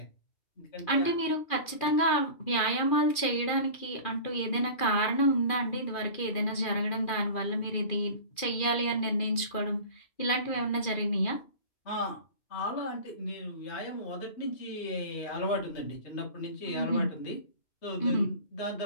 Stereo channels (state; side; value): late; right; 2.4 ms